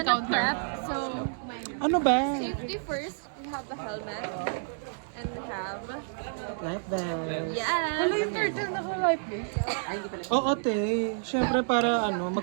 gonna encounter. prep, so Ano ba? safety first. We have the helmet. And we have... Life vest. Yes! Hala yung turtle naka-life vest. Oo, te. Siyempre para ano,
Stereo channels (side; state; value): left; silent; digital silence